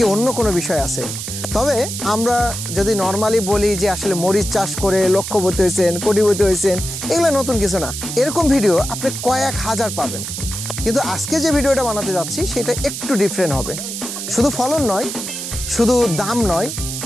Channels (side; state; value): right; noise; hiss, 6 dB below the sound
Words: অন্য কোনো বিষয় আছে? তবে আমরা যদি নর্মালি বলি যে আসলে মরিচ চাষ করে লক্ষপতি হয়েছেন, কোটিপতি হয়েছেন, এগুলো নতুন কিছু না। এরকম ভিডিও আপনি কয়েক হাজার পাবেন, কিন্তু আজকে যে ভিডিওটা বানাতে যাচ্ছি সেটা একটু ডিফারেন্ট হবে। শুধু ফলন নয়, শুধু দাম নয়,